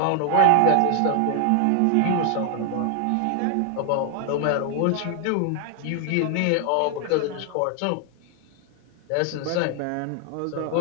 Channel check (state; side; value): different; both; correlation 0.00